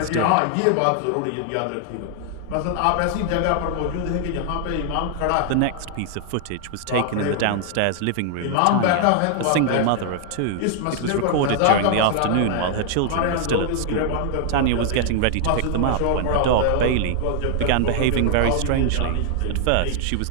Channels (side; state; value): both; different; correlation 0.00